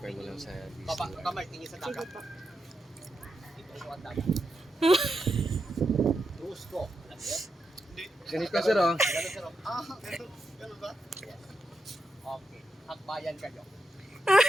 mo lang sa Baba, Disney. kamay, tingin sa Sige dagat. pa. Dito sa ang dagat. Cruise ko. Alam niyo? Ganito ka, sir, oh. Ganun sir. Ganun ba? Yes. Okay. Hakbayan kayo.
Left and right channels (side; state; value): both; normal; correlation 0.85